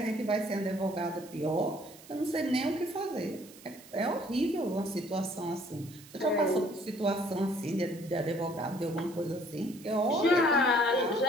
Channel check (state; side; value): noise; right; hiss, 20 dB below the sound